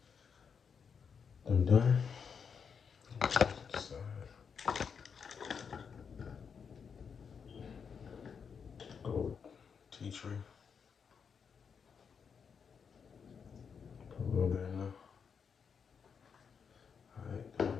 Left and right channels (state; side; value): quieter; right; 6.4 dB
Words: I'm done. Go tea tree. Put a little bit in there. Alright, done